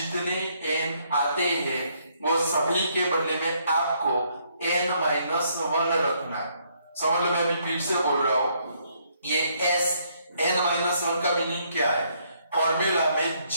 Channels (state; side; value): inverted; both; correlation -0.70